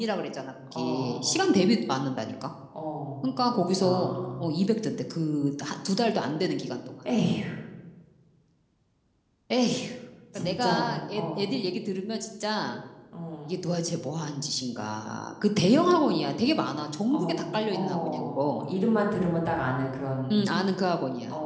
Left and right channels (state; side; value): identical; both; correlation 1.00